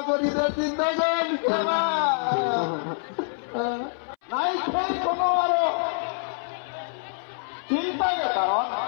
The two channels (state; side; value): silent; right; 61 dB below the other